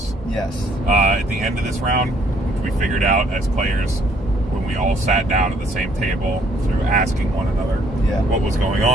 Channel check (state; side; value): normal; both; correlation 0.64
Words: Yes. At the end of this round, which we figured out as players when we all sat down at the same table through asking one another what was going